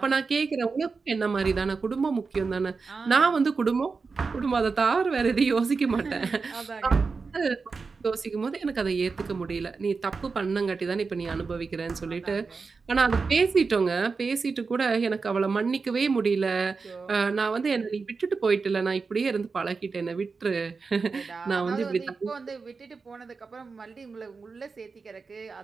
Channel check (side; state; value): left; quieter; 4.6 dB